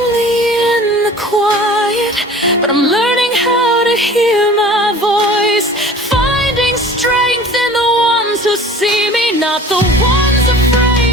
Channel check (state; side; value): normal; both; correlation 0.44